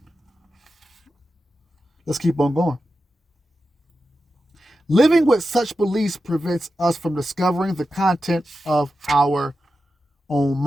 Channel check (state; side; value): normal; both; correlation 0.91